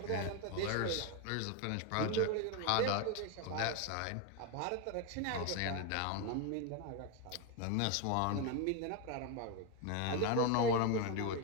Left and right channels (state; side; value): different; both; correlation 0.02